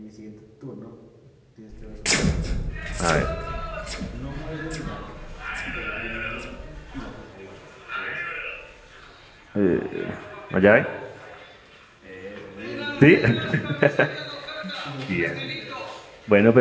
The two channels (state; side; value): identical; both; correlation 1.00